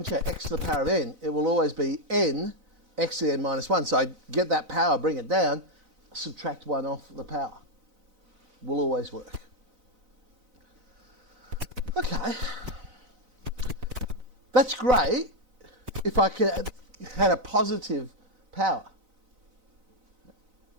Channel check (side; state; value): left; late; 4.0 ms